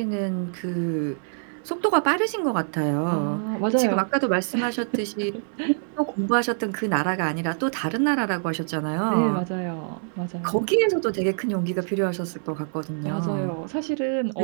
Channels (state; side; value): silent; left; digital silence